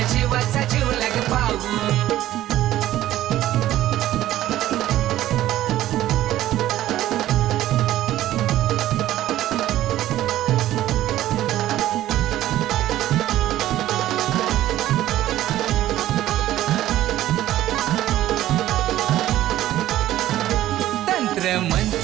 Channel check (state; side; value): quieter; left; 13.9 dB